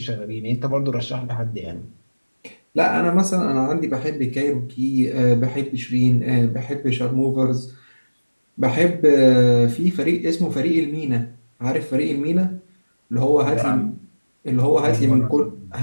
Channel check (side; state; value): both; inverted; correlation -1.00